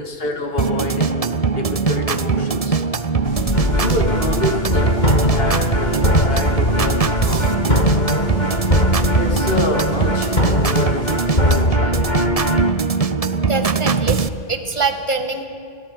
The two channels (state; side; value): late; right; 1.7 ms